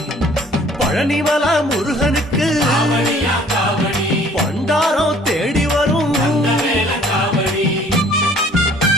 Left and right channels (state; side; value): normal; both; correlation 0.55